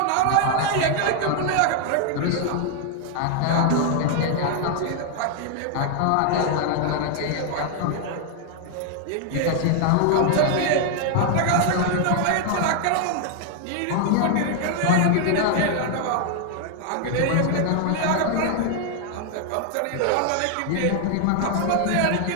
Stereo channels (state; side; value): different; both; correlation 0.00